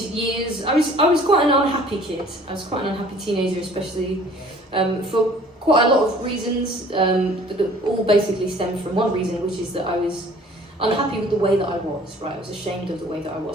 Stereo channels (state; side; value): normal; both; correlation 0.52